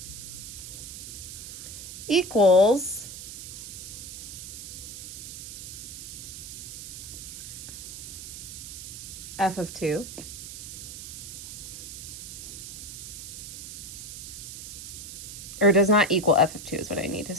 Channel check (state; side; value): noise; right; hiss, 9 dB below the sound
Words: equals f of 2. Or does not equal f of 2 is what I need to